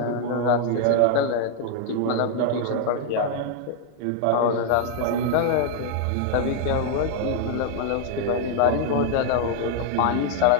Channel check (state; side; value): different; both; correlation 0.00